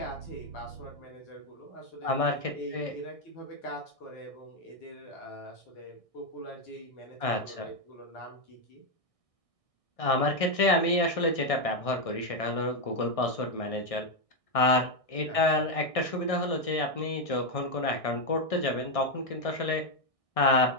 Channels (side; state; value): right; late; 1.6 ms